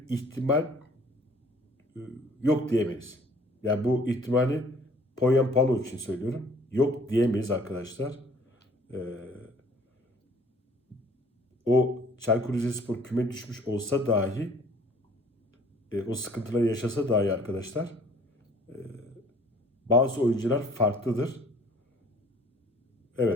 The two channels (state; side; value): normal; both; correlation 0.55